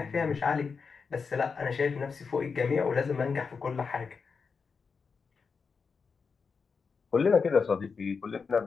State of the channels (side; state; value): right; quieter; 5.3 dB